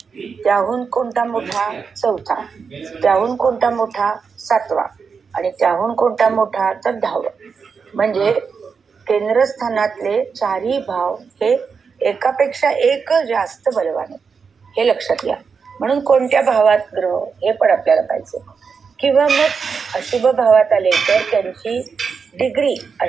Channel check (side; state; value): left; quieter; 5.6 dB